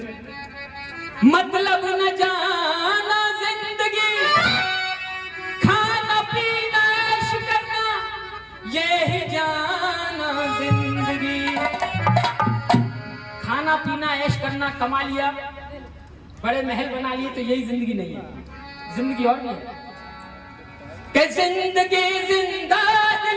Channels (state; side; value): identical; both; correlation 1.00